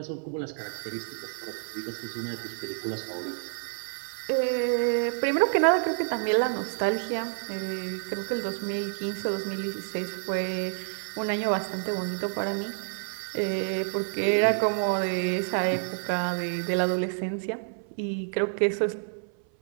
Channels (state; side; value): silent; left; 59 dB below the other